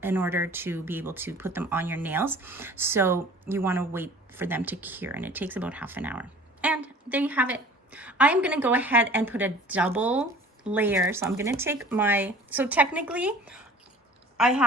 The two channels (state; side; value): normal; both; correlation 0.46